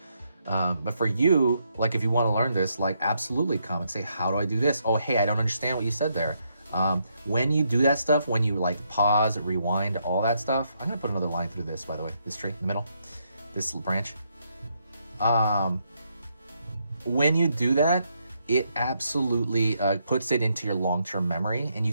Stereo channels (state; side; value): inverted; both; correlation -0.77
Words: But for you, like if you want to learn this, like absolutely comment, say, how do I do this? Oh, hey, I don't understand what you said there. When you do that stuff, when you like pause, rewind, all that stuff, I'm gonna put another line through this, by the way, this tree in the middle, this branch. When you do that, it absolutely puts it into your long-term memory, and you